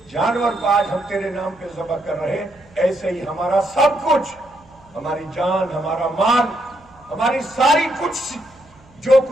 جانور کو آج ہم تیرے نام پہ ذبح کر رہے ہیں، ایسے ہی ہمارا سب کچھ، ہماری جان، ہمارا مال، ہماری ساری کچھ جو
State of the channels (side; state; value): right; noise; hum, 28 dB below the sound